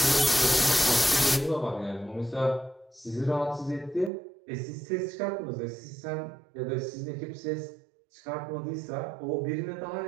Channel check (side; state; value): left; drops out; at 4.1 s